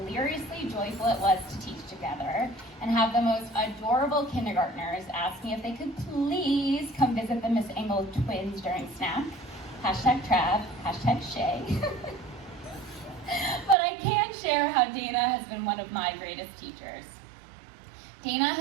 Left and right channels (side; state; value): left; drops out; at 13.8 s